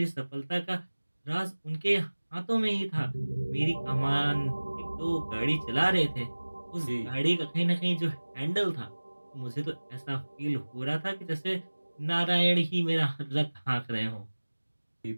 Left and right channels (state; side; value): inverted; both; correlation -1.00